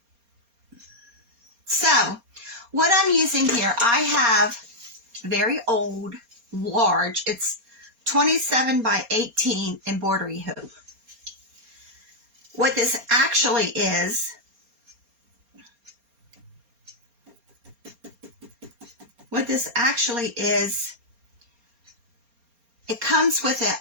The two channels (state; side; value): late; left; 4.3 ms